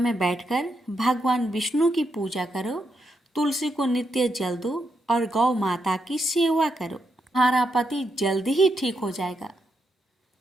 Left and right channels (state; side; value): normal; both; correlation 0.82